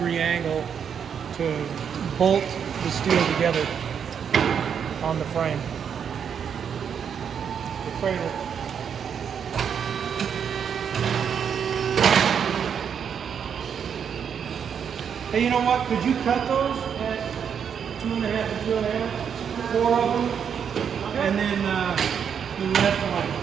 angle to bolt the steel together on the frame. The cradle. Hey, you know what? Could you cut those at 2.5 and 2.5? 4 of them, and then the rest one.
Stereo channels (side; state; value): left; quieter; 7.6 dB